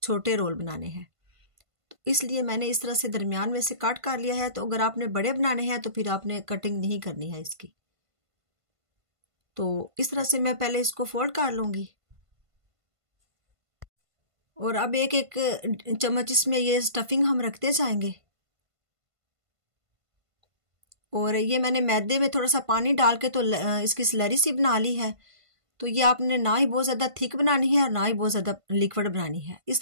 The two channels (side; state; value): left; late; 1.5 ms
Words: छोटे रोल बनाने हैं। तो इसलिए मैंने इस तरह से दरमियान में से कट कर लिया है। तो अगर आपने बड़े बनाने हैं तो फिर आपने कटिंग नहीं करनी है इसकी। तो इस तरह से मैं पहले इसको फोल्ड कर लूंगी और अब एक एक चम्मच इसमें ये स्टफिंग हम रखते जाएंगे। और ये मैंने मैदे में थोड़ा सा पानी डाल के तो इसकी स्लरी सी बना ली है। तो ये आपने ना ही बहुत ज़्यादा थिक बनानी है और ना ही बहुत ज़्यादा लिक्विड बनानी है। इस